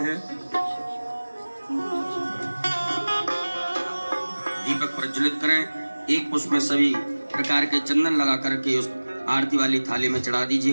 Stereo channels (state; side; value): inverted; both; correlation -1.00